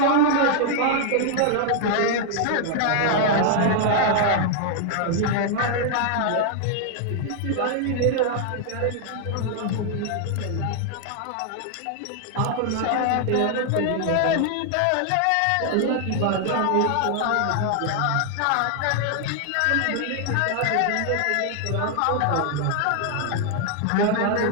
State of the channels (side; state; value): both; different; correlation 0.00